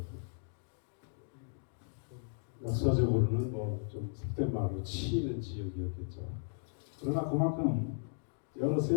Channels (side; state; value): right; silent; digital silence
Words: 역사적으로는 뭐 좀 속된 말로 치이는 지역이었겠죠. 그러나 그만큼 여러